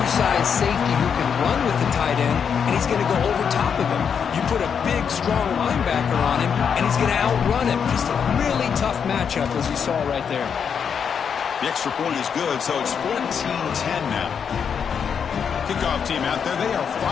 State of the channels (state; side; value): quieter; right; 7.1 dB